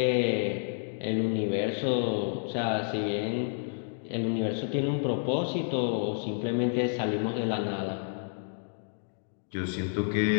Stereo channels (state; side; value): silent; right; digital silence